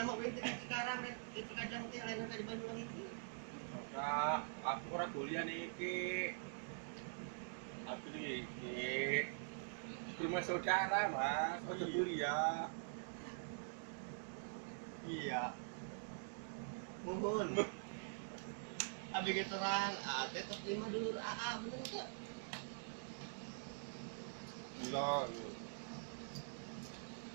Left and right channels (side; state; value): left; silent; digital silence